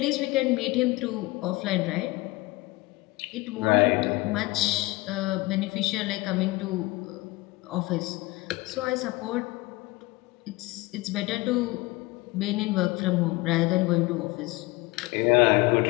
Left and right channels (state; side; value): quieter; right; 21.7 dB